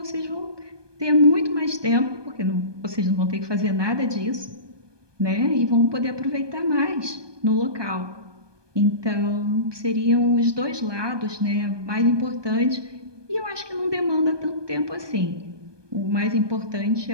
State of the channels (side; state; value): left; late; 1.2 ms